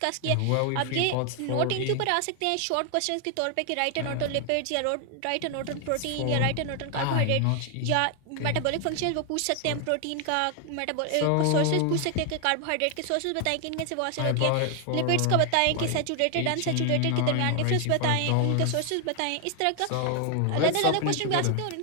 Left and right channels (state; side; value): different; both; correlation 0.00